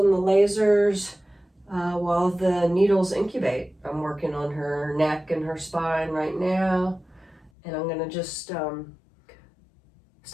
the lasers while the needles incubate. I'm working on her neck and her spine right now, and I'm gonna just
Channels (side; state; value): right; drops out; at 7.5 s